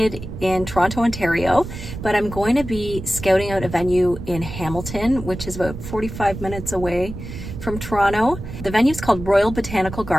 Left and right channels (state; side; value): noise; right; rumble, 10 dB below the sound